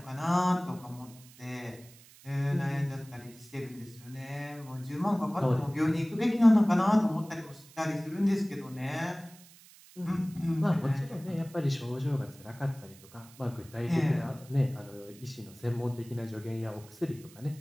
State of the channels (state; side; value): noise; right; hiss, 23 dB below the sound